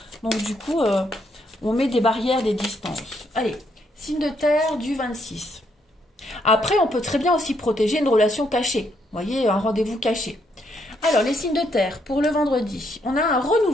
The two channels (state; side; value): normal; both; correlation 0.74